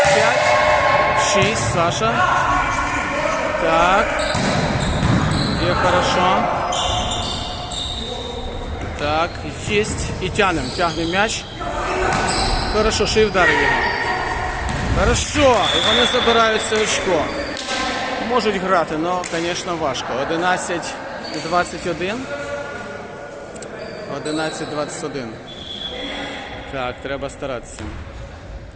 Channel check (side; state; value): both; identical; correlation 1.00